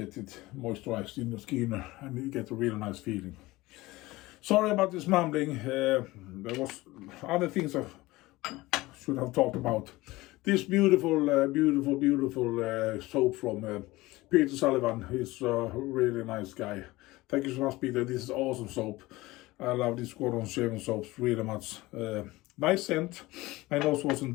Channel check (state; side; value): quieter; right; 19.7 dB